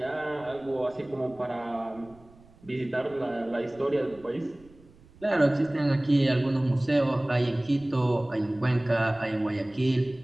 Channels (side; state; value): right; noise; rumble, 26 dB below the sound